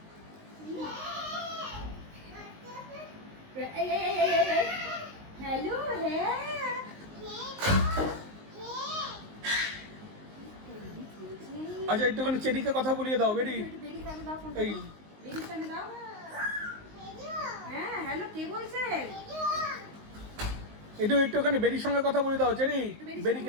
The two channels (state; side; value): late; left; 19 ms